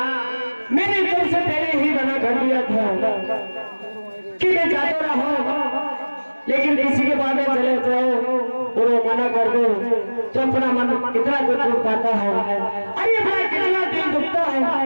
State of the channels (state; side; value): inverted; both; correlation -1.00